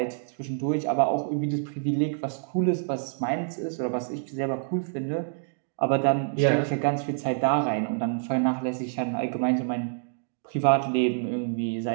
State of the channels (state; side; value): silent; left; digital silence